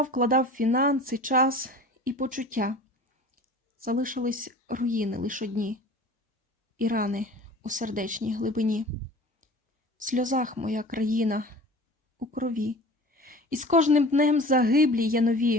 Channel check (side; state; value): both; normal; correlation 0.41